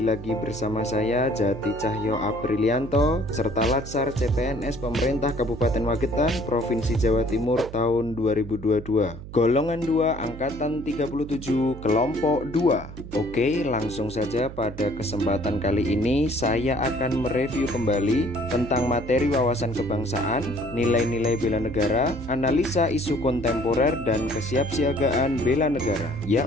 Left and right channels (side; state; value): right; noise; hum, 13 dB below the sound